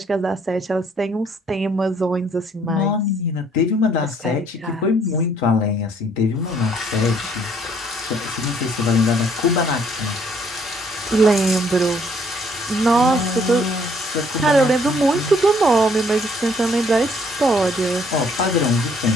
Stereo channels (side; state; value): both; normal; correlation 0.64